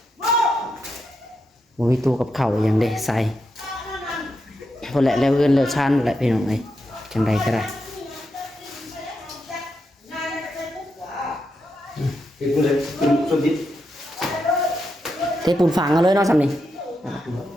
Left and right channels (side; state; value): both; normal; correlation 0.84